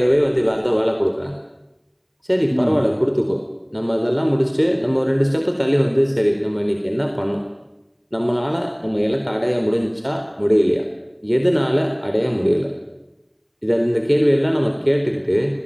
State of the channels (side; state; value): both; identical; correlation 1.00